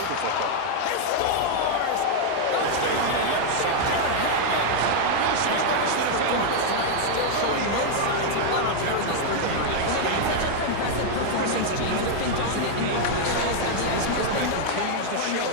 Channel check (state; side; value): different; both; correlation 0.00